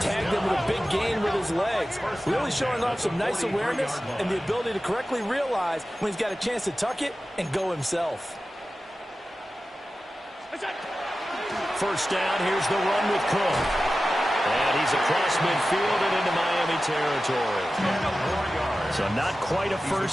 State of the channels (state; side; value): normal; both; correlation 0.94